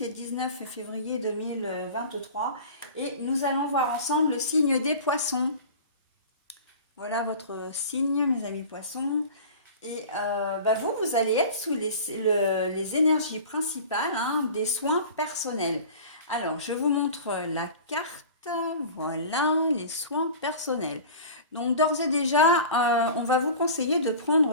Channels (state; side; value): inverted; both; correlation -0.38